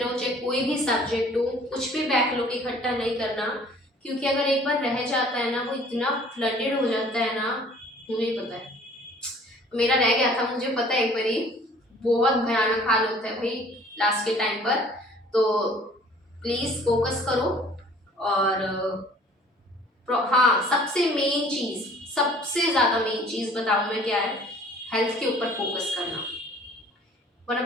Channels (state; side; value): normal; both; correlation 0.52